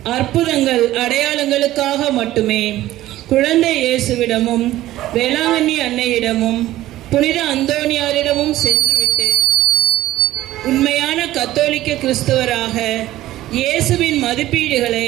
அற்புதங்கள் அடையாளங்களுக்காக மட்டுமே குழந்தை இயேசுவிடமும் வேளாங்கண்ணி அன்னையிடமும் புனித அந்தோனியாரிடமும் சென்றுவிட்டு உண்மையான கத்தோலிக்க கிறிஸ்தவராக இயேசுவின்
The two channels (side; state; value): left; quieter; 15.1 dB